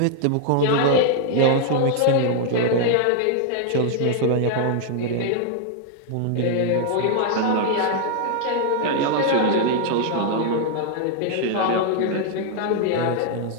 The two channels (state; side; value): different; both; correlation 0.00